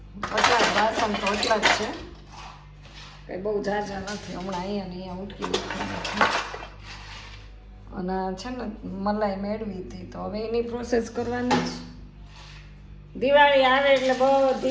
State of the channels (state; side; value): identical; both; correlation 1.00